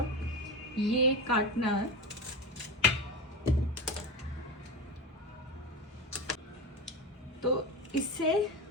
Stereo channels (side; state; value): both; normal; correlation 0.21